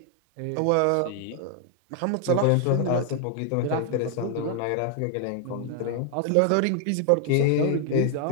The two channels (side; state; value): both; different; correlation 0.00